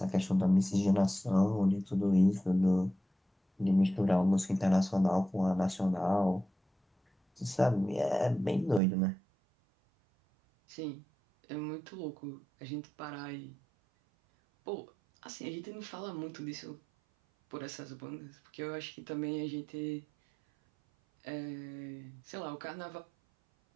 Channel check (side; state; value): left; drops out; at 8.8 s